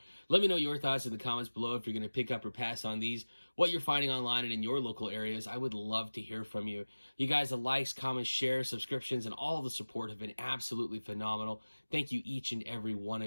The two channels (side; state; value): both; inverted; correlation -1.00